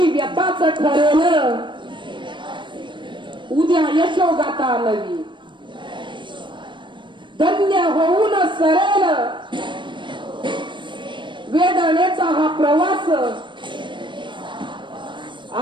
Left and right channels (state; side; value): late; left; 0.23 ms